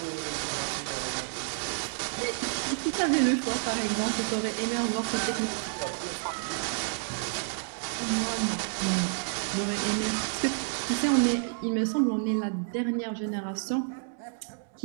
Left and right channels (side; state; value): left; silent; digital silence